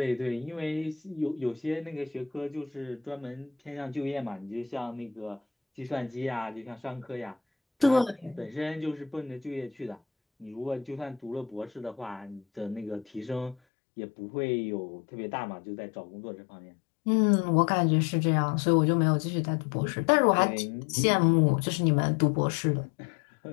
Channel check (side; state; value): right; drops out; at 13.6 s